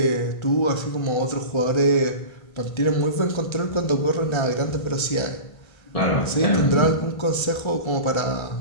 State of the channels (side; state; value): right; late; 1.3 ms